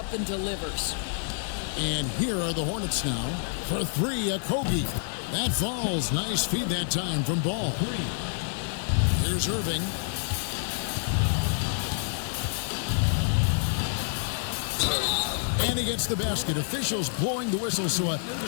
and delivers. And here are the Hornets now. For 3, a Kobe. That falls. Nice feed that time from Ball. Here's Irving. And he gets the basket. Officials blowing the whistle, so a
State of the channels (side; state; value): right; silent; digital silence